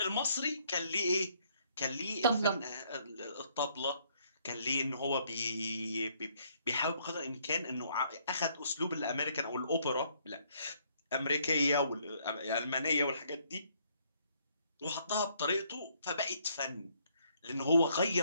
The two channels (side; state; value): both; inverted; correlation -0.67